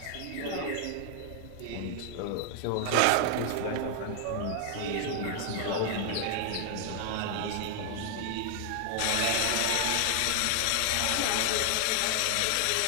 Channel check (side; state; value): both; different; correlation 0.00